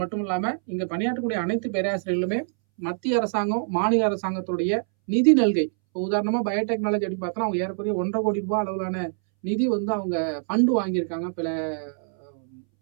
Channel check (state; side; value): silent; left; 62 dB below the other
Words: மட்டும் இல்லாம, இங்க பணியாற்றக்கூடிய அனைத்து பேராசிரியர்களுமே மத்திய அரசாங்கம், மாநில அரசாங்கத்துடைய நிதி நல்கை. இப்போ உதாரணமா பயோடெக்னாலஜி அப்படின்னு பார்த்தோம்னா, அவங்க ஏறக்குறைய ரூ. 1,50 கோடி அளவிலான நிதி வந்து அவங்க ஃபண்ட் வாங்கியிருக்காங்க.